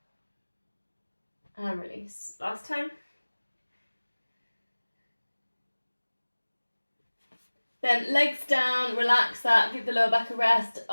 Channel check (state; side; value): inverted; both; correlation -1.00